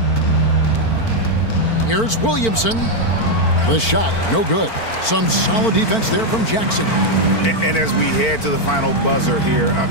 Here's Williamson. The shot, no good. Some solid defense there from Jackson. And as we head to the final buzzer here, a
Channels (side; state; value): right; late; 4.5 ms